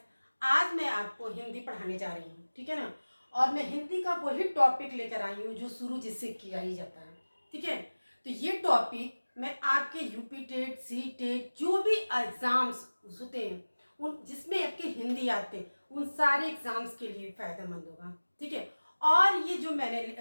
आज मैं आपको हिंदी पढ़ाने जा रही हूँ, ठीक है ना। और मैं हिंदी का वही टॉपिक लेकर आई हूँ जो शुरू जिससे किया ही जाता है, ठीक है। तो ये टॉपिक मैं आपके यूपी टेट, सी टेट, जो भी एग्जाम्स होते हैं उन जिसमें आपके हिंदी आते हैं उन सारे एग्जाम्स के लिए फायदेमंद होगा, ठीक है। और ये जो मैंने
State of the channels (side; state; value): both; inverted; correlation -1.00